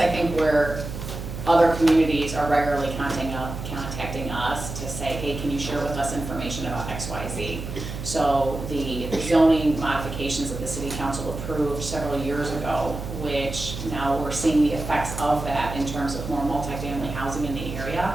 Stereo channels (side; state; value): right; noise; hum, 7 dB below the sound